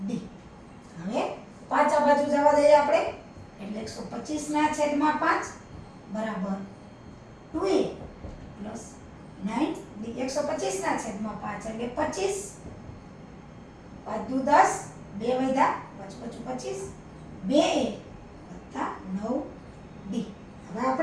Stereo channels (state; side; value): identical; both; correlation 1.00